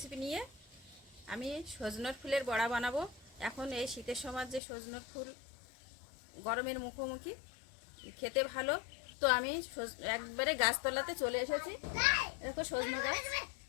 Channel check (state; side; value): drops out; right; at 4.6 s